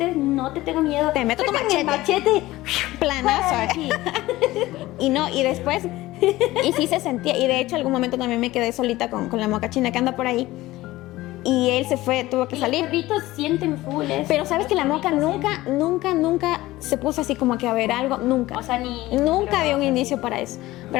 no te tengo miedo. Te meto tu Sácame el machete. Planazo, Sí. Y después, y sí se sentía, y de hecho algún momento también me quedé solita con la mocachina que anda por ahí. Y él se fue, tuvo que Y salir. los perritos sienten full eso. Pero sabes que la moca nunca se puso así como que a ver algo, nunca. O sea, ni... Nunca dio un indicio para eso.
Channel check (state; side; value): quieter; right; 17.7 dB